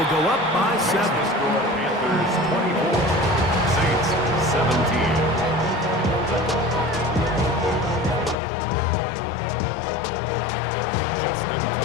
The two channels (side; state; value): right; drops out; at 8.3 s